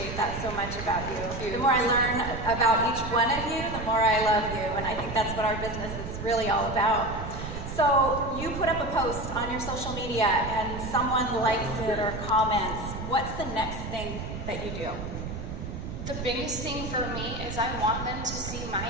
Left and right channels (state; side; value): noise; right; rumble, 7 dB below the sound